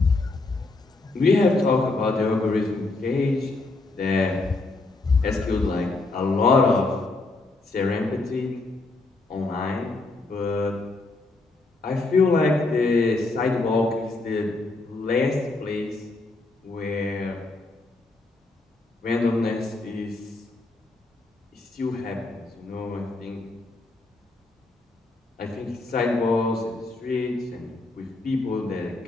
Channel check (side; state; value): right; quieter; 3.3 dB